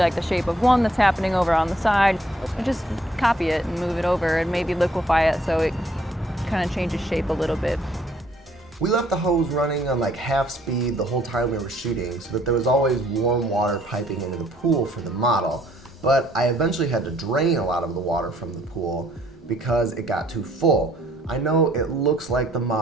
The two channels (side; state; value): both; normal; correlation 0.64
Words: the shape of one that's happening over on the side, you just copy it and move it over and maybe liquefy it so it kind of changes shape a little bit. We left the hose running on like half speed the whole time we were shooting so that there was always warm water piping into the pool for the model, but I eventually had to drain a lot of the water from the pool because it got too full. I know it looks like the